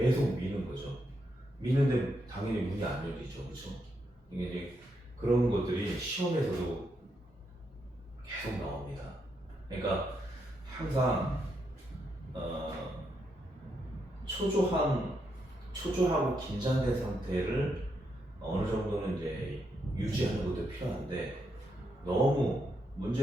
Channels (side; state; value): both; normal; correlation 0.80